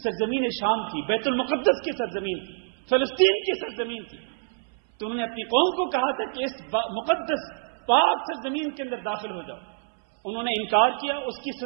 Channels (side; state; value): left; silent; 59 dB below the other